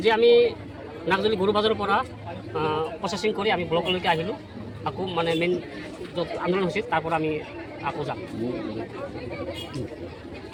আমি নাগজলি গৰু বাজাৰৰ পৰা প্ৰচেছিং কৰি আমি ব্লকলৈকে আহিলোঁ। আকৌ মানে মেইন য'ত আন্দোলন হৈছিল তাৰ পৰা আমি আকৌ যাম।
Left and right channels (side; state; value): both; identical; correlation 1.00